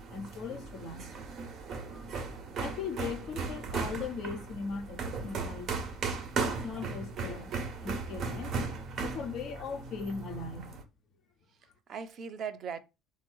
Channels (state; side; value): normal; both; correlation 0.49